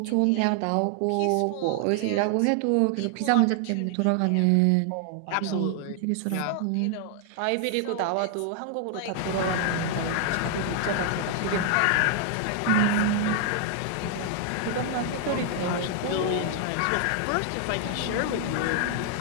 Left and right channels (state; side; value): different; both; correlation 0.00